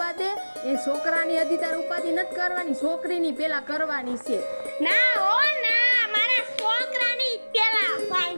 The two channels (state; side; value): inverted; both; correlation -1.00